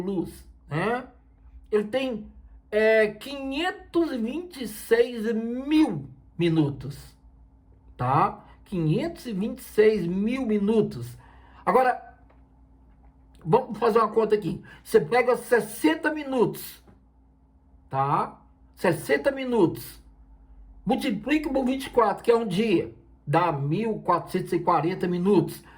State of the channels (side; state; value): both; identical; correlation 1.00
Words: Né? Ele tem 526 mil minutos. Tá? 526 mil minutos. Agora, vamos fazer uma conta aqui. Você pega 60 minutos. Tá? 60 minutos, multiplica por 24, que é um dia, dá 1.440 minutos.